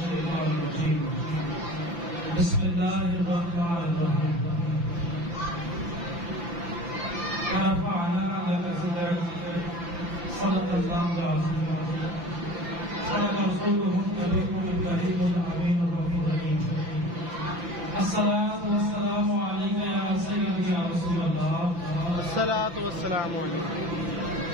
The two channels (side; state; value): left; late; 5.9 ms